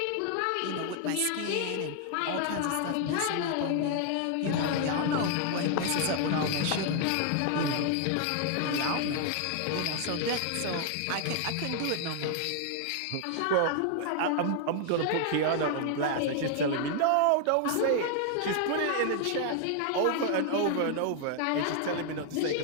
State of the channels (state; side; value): different; both; correlation 0.00